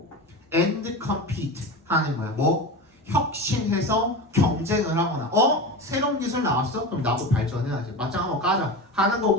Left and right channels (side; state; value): both; normal; correlation 0.26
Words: and compete 하는 거야. 뭐? 혁신해서 경쟁을 하거나 새로운 기술 나왔어? 그럼 나도 발전해야지. 맞짱 한번 까자 하는